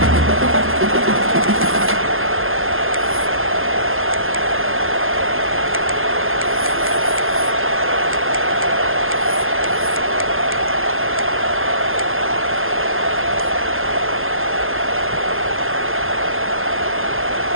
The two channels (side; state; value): left; late; 0.60 ms